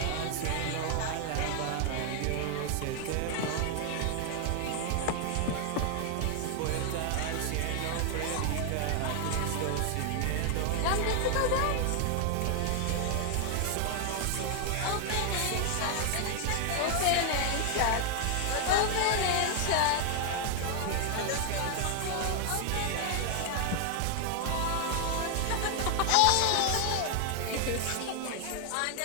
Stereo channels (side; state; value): both; different; correlation 0.00